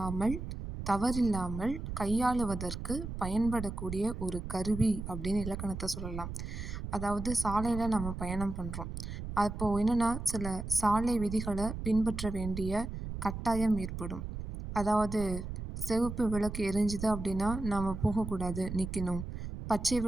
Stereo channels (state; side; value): noise; right; rumble, 7 dB below the sound